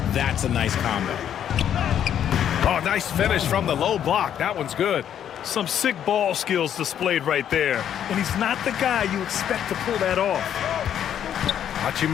That's a nice combo. Oh, nice finish from the low block. That one's good. Some sick ball skills displayed right there. And he's not the guy you expect to pull that off.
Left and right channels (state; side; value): quieter; right; 9.7 dB